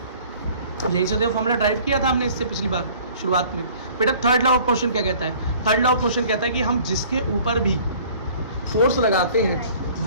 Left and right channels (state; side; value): inverted; both; correlation -0.51